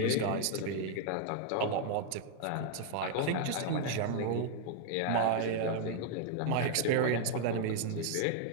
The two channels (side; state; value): both; different; correlation 0.00